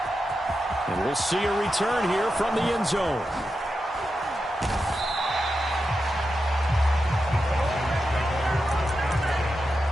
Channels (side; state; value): both; normal; correlation 0.89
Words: And we'll see a return here from the end zone.